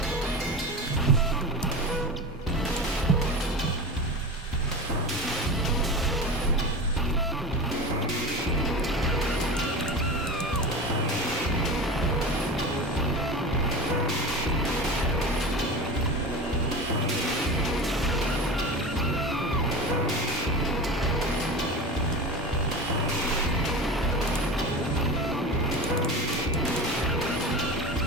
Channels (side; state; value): both; normal; correlation 0.28